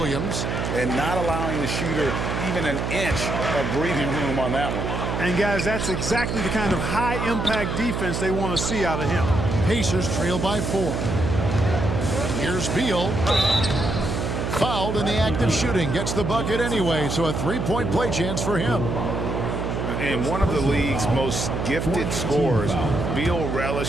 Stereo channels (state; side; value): noise; right; hum, 2 dB below the sound